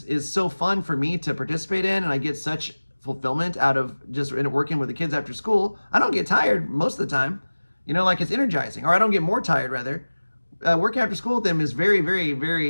so fun for me to participate in, and I get such fulfillment out of just working with the kids after school. I don't get tired most of the time, like it's energizing, or I don't get more tired rather. Working after school with them is very, very,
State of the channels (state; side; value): inverted; both; correlation -1.00